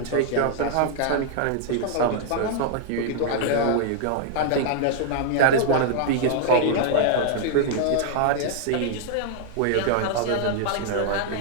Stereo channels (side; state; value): both; different; correlation -0.01